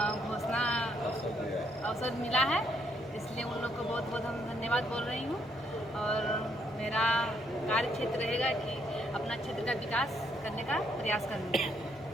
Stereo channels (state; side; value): normal; both; correlation 0.72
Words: घोषणा अवसर मिला है, इसलिए उन लोग को बहुत बहुत हम धन्यवाद बोल रही हूँ। और मेरा कार्य क्षेत्र रहेगा कि अपना क्षेत्र का विकास करने का प्रयास करूँगा।